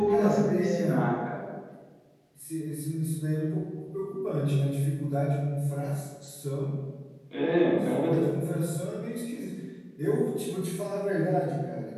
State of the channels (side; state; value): both; identical; correlation 1.00